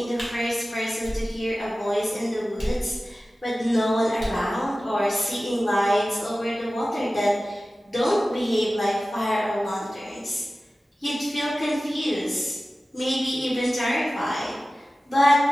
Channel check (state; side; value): normal; both; correlation 0.96